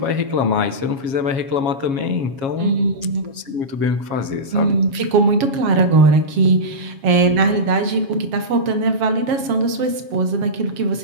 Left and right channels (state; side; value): late; left; 7.4 ms